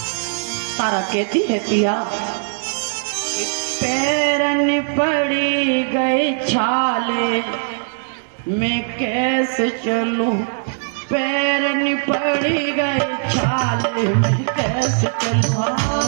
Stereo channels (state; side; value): silent; left; digital silence